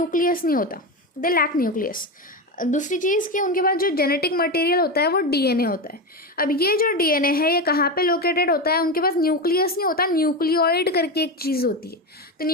नहीं होता, दे लैक न्यूक्लियस। दूसरी चीज़ कि उनके पास जो जेनेटिक मटेरियल होता है वो डीएनए होता है। अब ये जो डीएनए है ये कहाँ पे लोकेटेड होता है? उनके पास न्यूक्लियस नहीं होता, न्यूक्लियोइड करके एक चीज़ होती है। तो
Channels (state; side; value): normal; both; correlation 0.17